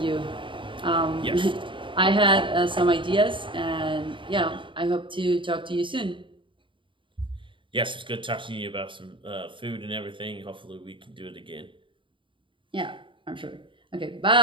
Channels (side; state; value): left; late; 0.24 ms